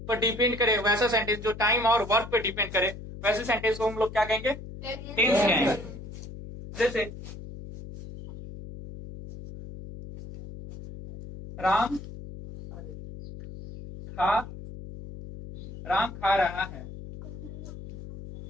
पर डिपेंड करे वैसा सेंटेंस, जो टाइम और वर्क पर डिपेंड करे वैसे सेंटेंस को हम लोग क्या कहेंगे, टेंस कहेंगे। जैसे राम खा रहा है।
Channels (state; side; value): noise; left; hum, 12 dB below the sound